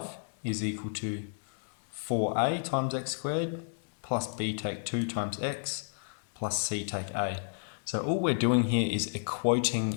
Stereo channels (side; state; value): right; silent; digital silence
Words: is equal to 4a times x squared plus b take 2 times x plus c take a. So all we're doing here is